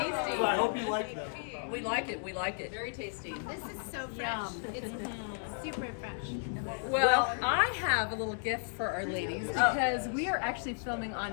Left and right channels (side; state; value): right; silent; 55 dB below the other